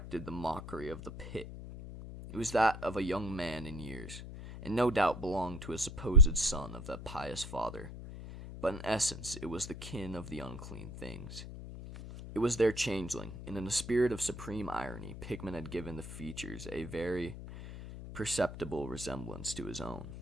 the mockery of the pit. It was that of a young man in years, and no doubt belonged to a supposed son of that pious father, but in essence it was the kin of the unclean things. It was their changeling, and in a spirit of supreme irony, Pickman had given the features a very perceptible resemblance to his own.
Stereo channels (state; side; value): noise; left; hum, 10 dB below the sound